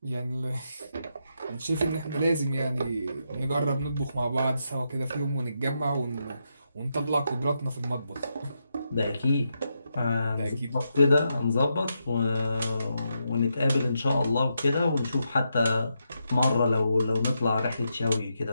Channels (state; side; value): inverted; both; correlation -0.83